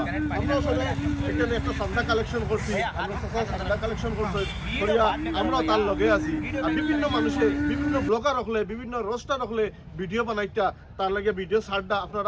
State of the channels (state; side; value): identical; both; correlation 1.00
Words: আমরা আসলে এখানে একটা চান্দা কালেকশন করছি, চান্দা কালেকশন করছি করিয়া আমরাও তার লগে আছি। আর বিভিন্ন মানুষে, বিভিন্ন ব্লগার হলে, বিভিন্ন রোস্টার হলে ভিডিও বানাইটা তার লাগে ভিডিও ছাড়টা